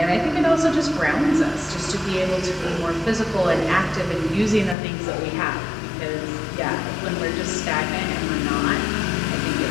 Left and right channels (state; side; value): drops out; right; at 4.8 s